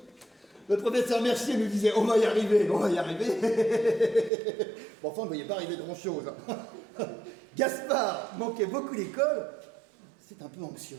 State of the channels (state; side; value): drops out; left; at 4.3 s